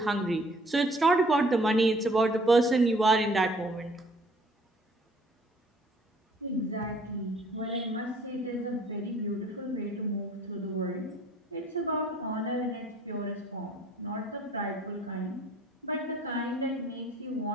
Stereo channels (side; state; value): both; normal; correlation 0.57